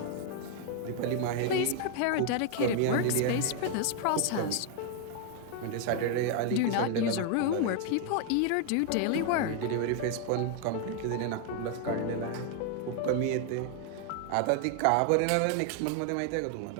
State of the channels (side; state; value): both; different; correlation 0.00